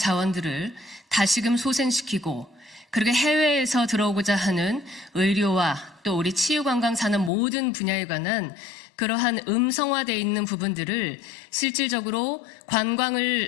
다시금 소생시키고, 그리고 해외에서 들어오고자 하는 의료와 또 우리 치유관광 산업 모든 분야에 관한 그러한 음성화되어 있는 부분들을 실질적으로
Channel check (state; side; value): drops out; right; at 7.3 s